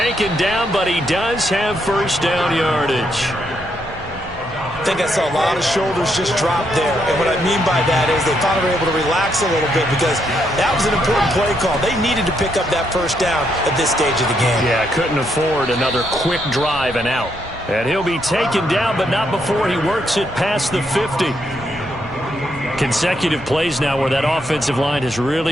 down, but he does have first down yardage. I think I saw a lot of shoulders just drop there. And what I mean by that is they finally were able to relax a little bit because that was an important play call. They needed to pick up that first down at this stage of the game. Yeah, couldn't afford another quick drive and out. And he'll be taken down, but not before he works it past the 50. Consecutive plays now where that offensive line has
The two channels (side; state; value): both; normal; correlation 0.77